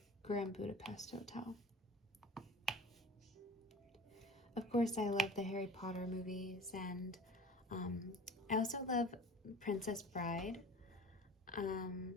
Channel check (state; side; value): normal; both; correlation 0.41